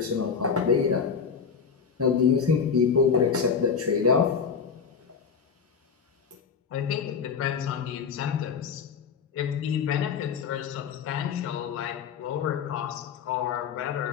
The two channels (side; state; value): right; quieter; 6.3 dB